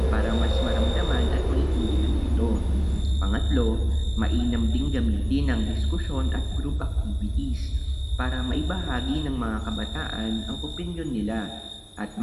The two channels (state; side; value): identical; both; correlation 1.00